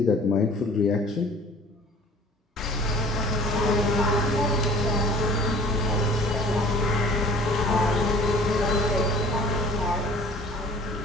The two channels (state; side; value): normal; both; correlation 0.48